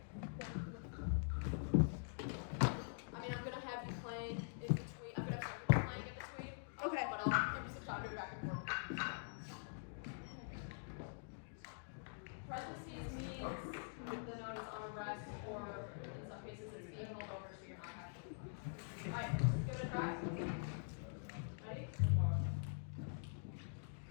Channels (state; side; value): silent; right; digital silence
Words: I mean, I'm going to have you playing in between. I'm going to have you playing in between. Okay. But I'll give you some time to go back and forth. Parentheses means the note is on a rest, or in some cases it's being held over, so you're not actually. Alright, give it a try. Ready?